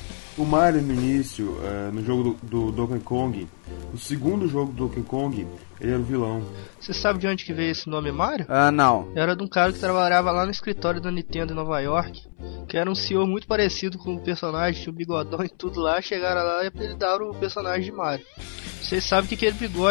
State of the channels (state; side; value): silent; right; 62 dB below the other